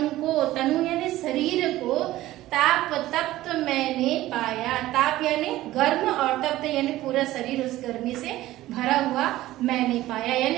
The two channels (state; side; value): quieter; left; 15.8 dB